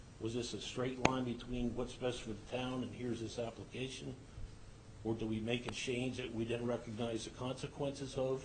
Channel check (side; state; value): both; identical; correlation 1.00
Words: was this a straight line between what's best for the town and here's this application? Or do we make a change that we didn't recognize the consequences of?